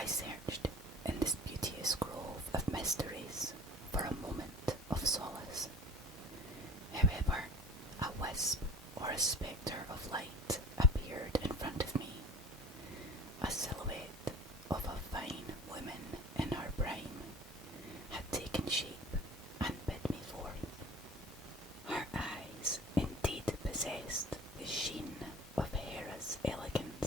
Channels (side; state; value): both; normal; correlation 0.42